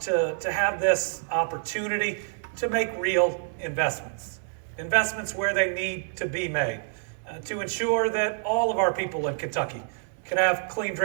have this opportunity to make real investments. Investments where they need to be made to ensure that all of our people in Kentucky can have clean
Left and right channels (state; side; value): silent; left; 60 dB below the other